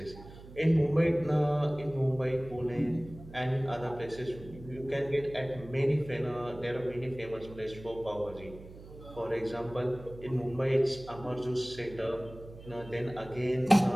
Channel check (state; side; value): noise; right; hum, 17 dB below the sound